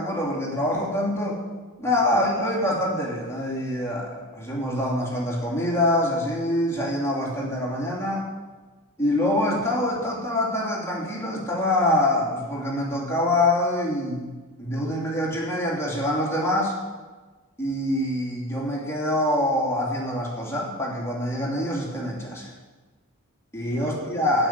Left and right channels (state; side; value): normal; both; correlation 0.29